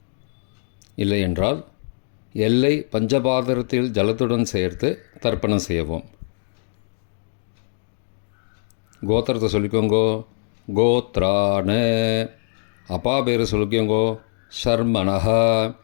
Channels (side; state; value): right; silent; digital silence